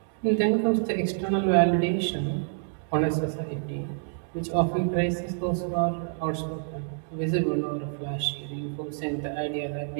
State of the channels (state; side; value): silent; left; digital silence